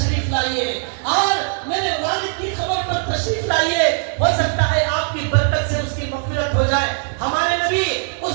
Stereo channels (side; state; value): left; silent; 66 dB below the other